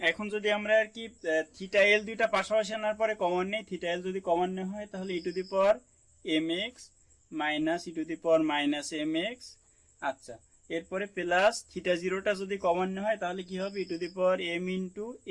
এখন যদি আমরা আর কি থিটা এল দুইটা পাশাপাশি আনার পরে কমন নেই, থিটা এল যদি কমন নেওয়া হয় তাহলে e to the power m x minus E to the power minus m x. আচ্ছা, এরপরে প্লাস থিটা জিরোটা যদি কমন হয় তাহলে কি হবে e to the power m into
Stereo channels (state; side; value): identical; both; correlation 1.00